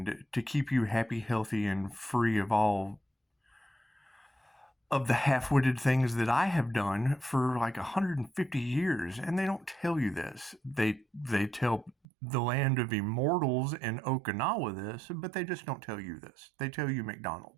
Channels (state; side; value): drops out; left; at 11.9 s